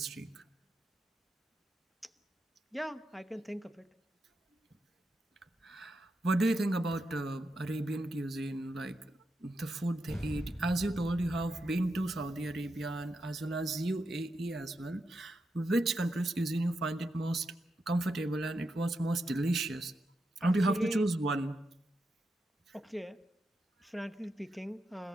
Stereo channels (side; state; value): both; normal; correlation 0.85